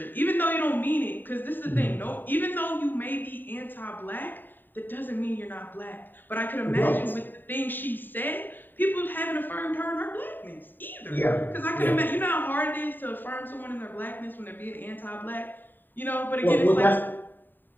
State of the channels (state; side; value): late; right; 0.091 ms